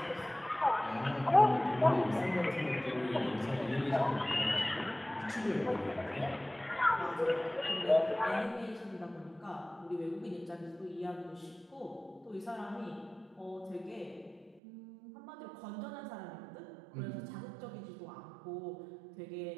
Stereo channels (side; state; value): left; drops out; at 14.6 s